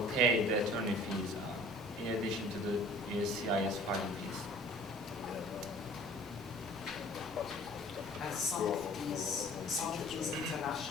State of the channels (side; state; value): both; normal; correlation 0.49